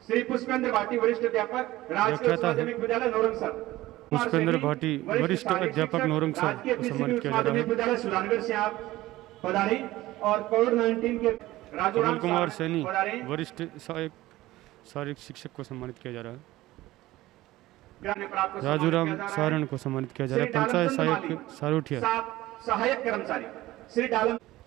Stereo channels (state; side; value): quieter; left; 17.1 dB